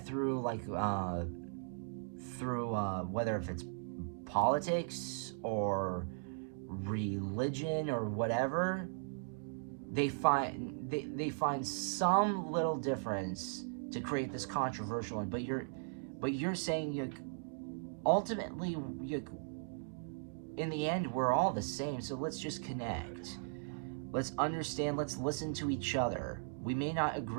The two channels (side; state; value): left; silent; digital silence